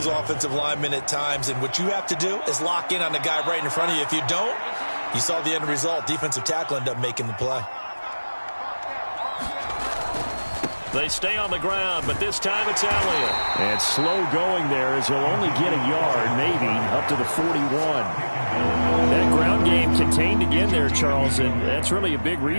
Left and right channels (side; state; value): both; inverted; correlation -1.00